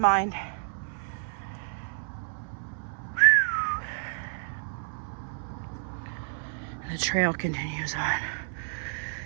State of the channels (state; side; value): silent; left; 58 dB below the other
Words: mind. And the trail continues on